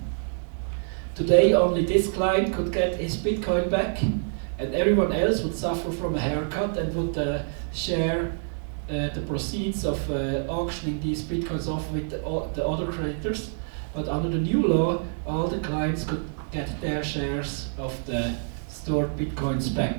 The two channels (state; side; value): silent; left; 61 dB below the other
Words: today only this client could get his Bitcoin back, and everyone else would suffer from a haircut and would share the proceeds of auctioning these Bitcoins off with the other creditors. But under the new law, all the clients could get their shares of the stored Bitcoins